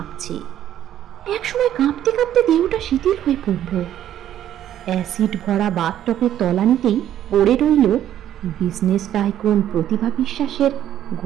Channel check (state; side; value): quieter; left; 11.3 dB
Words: একসময় কাঁপতে কাঁপতে দেহটা শিথিল হয়ে পড়ল। অ্যাসিড ভরা বাথটবের তলানিতেই পড়ে রইল বিজনেস টাইকুন প্রতিভা বিশ্বাসের